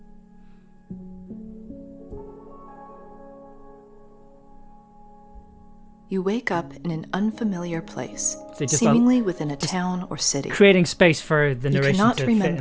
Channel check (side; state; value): both; identical; correlation 1.00